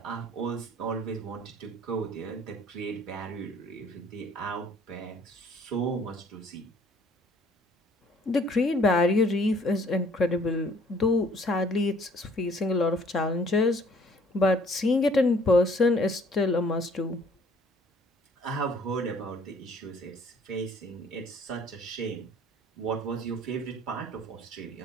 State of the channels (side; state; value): both; normal; correlation 0.58